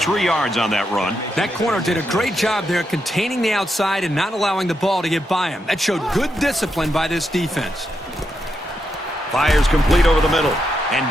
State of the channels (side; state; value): both; normal; correlation 0.83